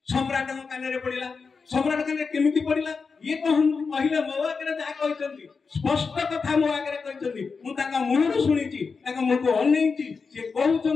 सम्राट कान रे पड़िला सम्राट कान रे केमिति पड़िला ये कहले मो आगे जा कहचंती स्पष्ट कथा मो आगे कहचंती मु ताका मुहरु सुनिची ताका मुको अनैची से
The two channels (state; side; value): quieter; right; 5.0 dB